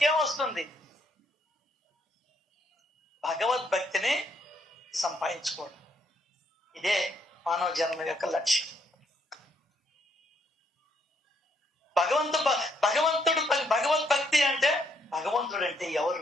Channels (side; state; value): both; normal; correlation 0.72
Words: భగవద్భక్తిని సంపాదించుకోవడం. ఇదే మానవ జన్మ యొక్క లక్ష్యం. భగవద్భక్తి అంటే భగవంతుడు అంటే ఎవరు?